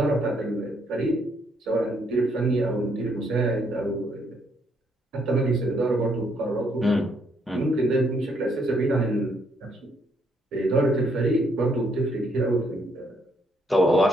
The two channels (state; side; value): normal; both; correlation 0.72